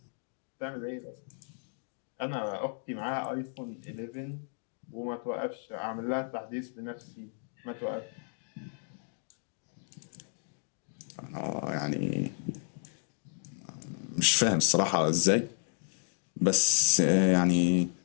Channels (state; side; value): silent; right; 56 dB below the other